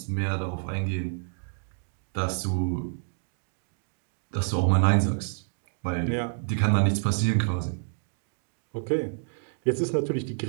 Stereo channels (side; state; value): left; silent; 59 dB below the other